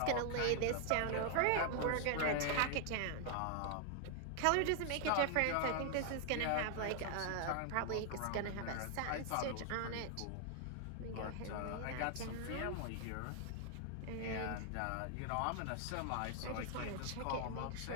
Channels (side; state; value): both; different; correlation 0.00